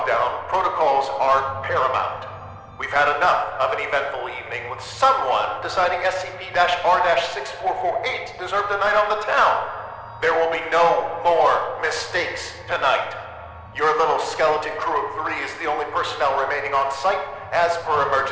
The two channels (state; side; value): identical; both; correlation 1.00